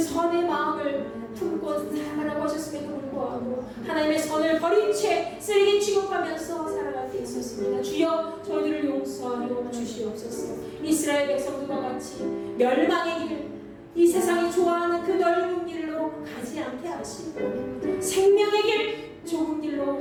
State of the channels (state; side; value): identical; both; correlation 1.00